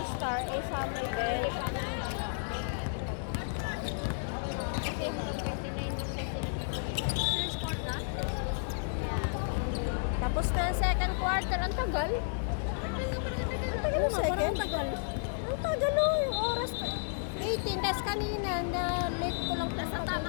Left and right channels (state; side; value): silent; right; digital silence